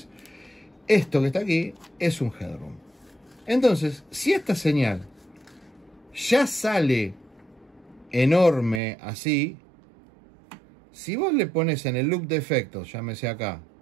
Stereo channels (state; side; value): drops out; left; at 8.8 s